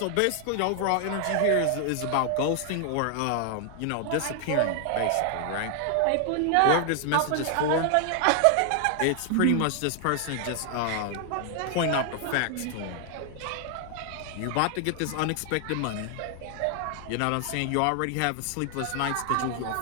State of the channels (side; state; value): both; different; correlation 0.00